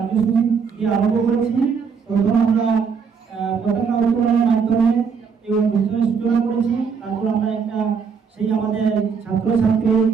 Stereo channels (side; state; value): left; quieter; 5.9 dB